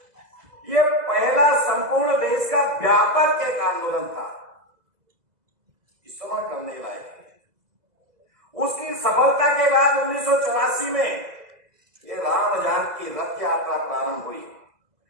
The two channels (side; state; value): left; late; 2.0 ms